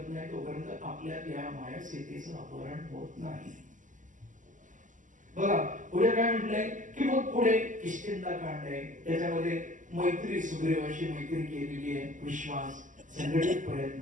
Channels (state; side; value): late; left; 0.37 ms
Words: नाही तोपर्यंत आपल्यात या माया स्थितीचं अपहरण होत नाही. बघा पुढे काय म्हटलंय की मग पुढे किष्किंधा कांड आहे, त्याच्यामध्ये मैत्री, सुग्रीवाशी मैत्री केलेली आहे, विश्वास, संघटित